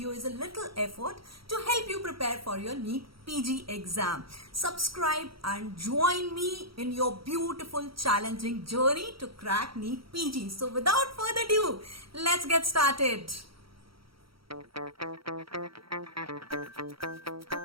is a little effort to help you prepare for your NEET PG exam. Subscribe and join me in your beautiful challenging journey to crack NEET PG. So without further ado, let's get started.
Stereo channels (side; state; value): left; late; 0.75 ms